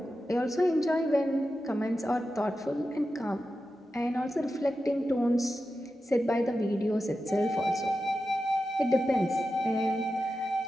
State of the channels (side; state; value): both; normal; correlation 0.91